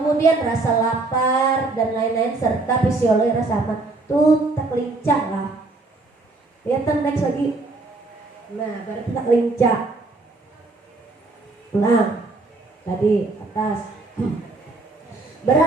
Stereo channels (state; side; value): quieter; left; 3.3 dB